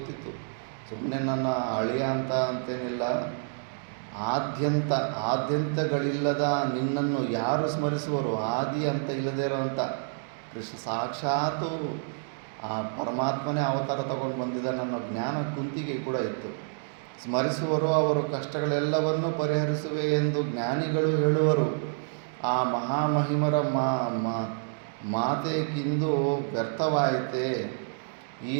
ಸುಮ್ಮನೆ ನನ್ನ ಅಳಿಯ ಅಂತೇನಿಲ್ಲ. ಆದ್ಯಂತಗಳಿಲ್ಲದ ನಿನ್ನನ್ನು ಯಾರು ಸ್ಮರಿಸುವರು? ಆದಿ ಅಂತ ಇಲ್ಲದೇ ಇರೋವಂಥ ಕೃಷ್ಣ ಸಾಕ್ಷಾತ್ತು ಆ ಪರಮಾತ್ಮನೇ ಅವತಾರ ತಗೊಂಡು ಬಂದಿದ್ದ ನನ್ನ ಜ್ಞಾನ ಕುಂತಿಗೆ ಕೂಡ ಇತ್ತು. ಸ್ಮರಿಸುವರು, ಅವರು ಕಷ್ಟಗಳೆಲ್ಲವನ್ನೂ ಪರಿಹರಿಸುವೆ ಎಂದು ಜ್ಞಾನಿಗಳು ಹೇಳುವರು. ಆ ಮಹಾಮಹಿಮರ ಮಾತೇಕಿಂದು ವ್ಯರ್ಥವಾಯಿತೆ. ಈ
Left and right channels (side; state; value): left; silent; digital silence